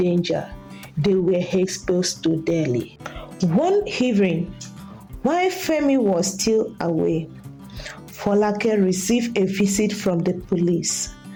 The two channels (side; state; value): both; identical; correlation 1.00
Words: they were exposed to daily. One evening, while Femi was still away, Folake received a visit from the police.